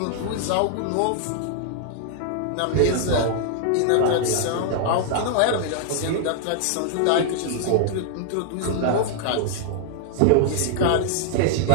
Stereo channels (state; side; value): different; both; correlation -0.01